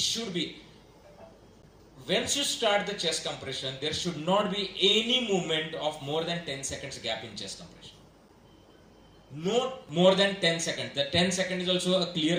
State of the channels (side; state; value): both; identical; correlation 1.00